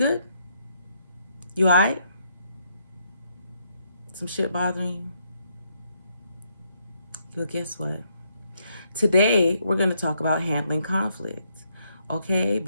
You alright? Some shit bothering you? Well, guess what? Today, we're going to talk about handling conflict, okay?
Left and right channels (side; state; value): both; inverted; correlation -0.75